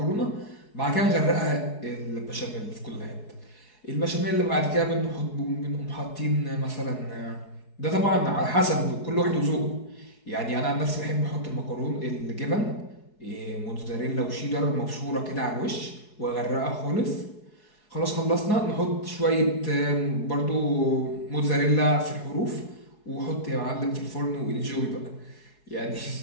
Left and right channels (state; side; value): late; right; 4.7 ms